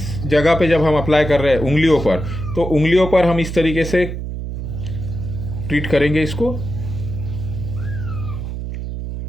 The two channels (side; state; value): right; noise; hum, 6 dB below the sound